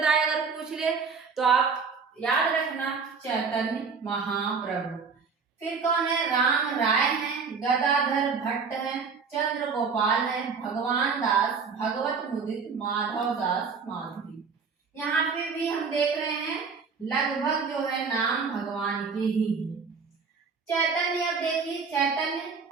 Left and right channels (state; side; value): quieter; left; 5.3 dB